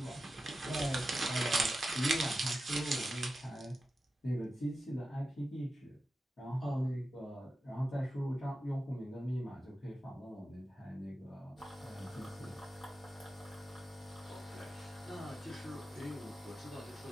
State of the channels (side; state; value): both; normal; correlation 0.91